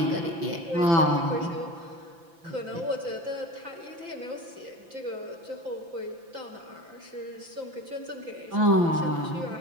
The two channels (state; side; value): late; left; 5.9 ms